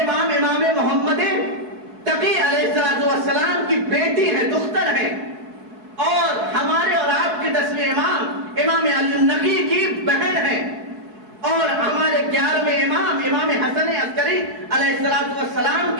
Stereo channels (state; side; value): late; left; 4.7 ms